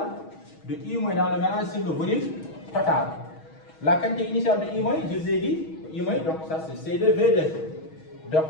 de I- dans le mélange sur le volume total. La quantité initiale de I-, je vous ai dit, I-, donc ça c'est C2V2. Donc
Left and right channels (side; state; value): right; late; 6.3 ms